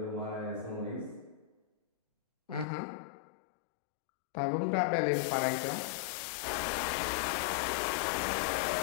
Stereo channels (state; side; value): drops out; right; at 2.7 s